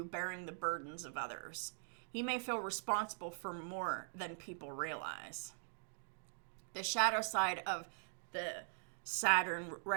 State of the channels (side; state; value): left; silent; digital silence